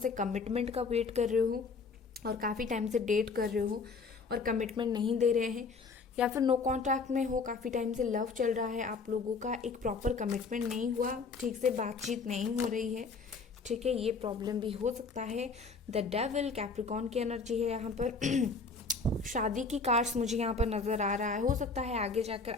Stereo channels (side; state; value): right; quieter; 4.5 dB